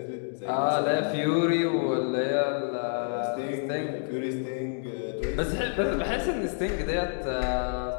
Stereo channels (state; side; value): silent; right; digital silence